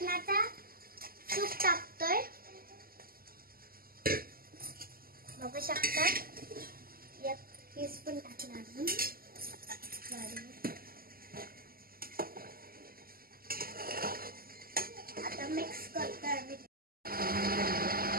सूप टाकतोय, बघू शकता. एक टीस्पून टाकला अजून. आता मिक्स करतोय आम्ही.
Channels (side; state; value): left; late; 0.42 ms